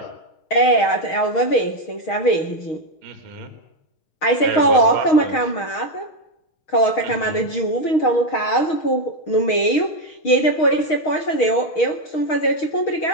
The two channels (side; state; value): right; late; 6.4 ms